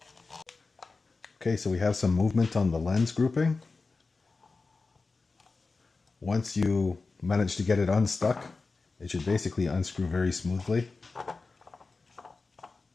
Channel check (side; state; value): right; quieter; 3.9 dB